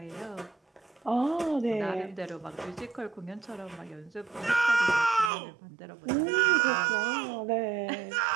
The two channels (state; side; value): drops out; left; at 5.3 s